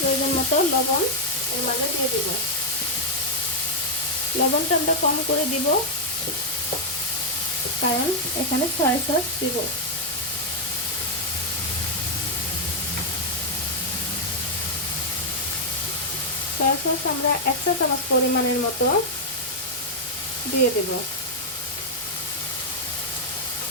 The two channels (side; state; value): right; noise; rumble, 30 dB below the sound